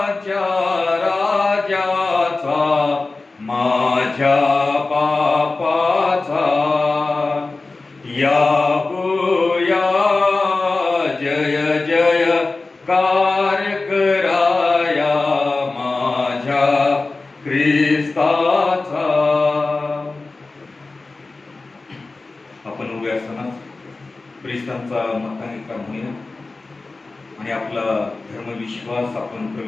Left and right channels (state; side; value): quieter; right; 3.5 dB